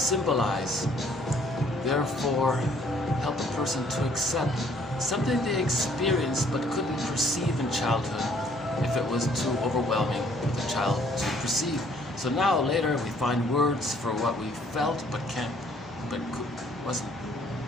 therefore help a person to accept something they experienced but couldn't perceive in childhood if it was too overwhelming for the child to perceive. So now later we find words for what we felt but wasn't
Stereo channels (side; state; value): both; normal; correlation 0.62